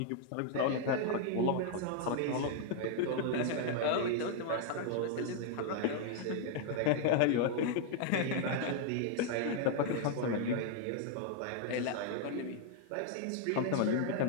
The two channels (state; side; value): different; both; correlation 0.00